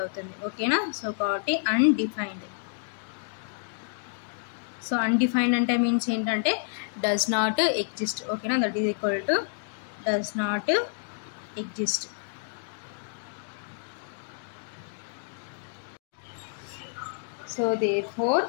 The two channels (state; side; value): silent; right; digital silence